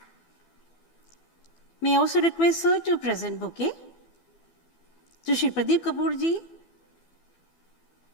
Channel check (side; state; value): right; late; 12 ms